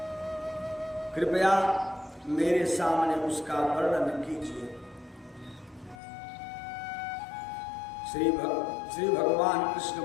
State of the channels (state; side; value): drops out; right; at 6.0 s